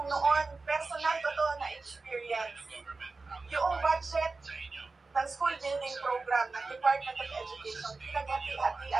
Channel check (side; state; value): left; quieter; 3.8 dB